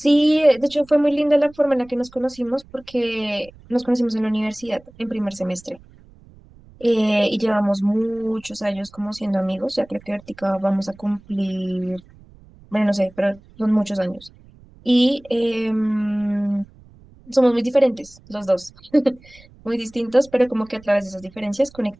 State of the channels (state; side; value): noise; right; rumble, 25 dB below the sound